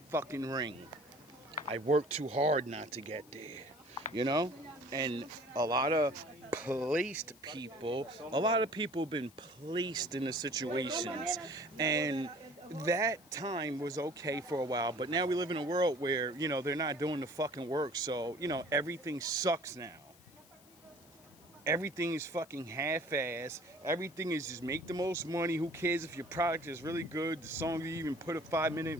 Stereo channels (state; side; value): noise; left; hiss, 25 dB below the sound